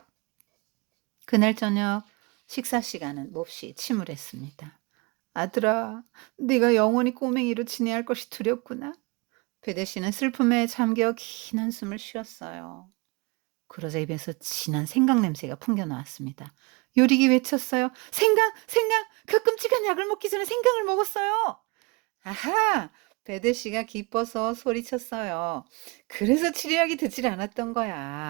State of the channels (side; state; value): left; quieter; 28.0 dB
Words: 그날 저녁 식사 시간은 몹시 침울했습니다. "아들아, 네가 영원히 꼬맹이로 지내야 할 것이 두렵구나." 베데 씨는 슬픔에 잠겨 긴 한숨을 쉬었어요. 그러자 입에서 진한 생강 냄새가 풍겨 나왔습니다. 요리기 외쳤어요. "생강! 생강! 그 끔찍한 약을 먹기 전에 생강을 먹었어요!" 아하! 베드 씨가 기뻐서 소리쳤어요. "그래서 치료약이 듣질 않았던